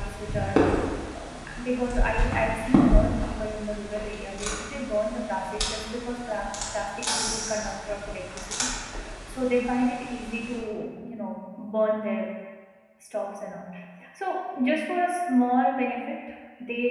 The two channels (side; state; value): both; identical; correlation 1.00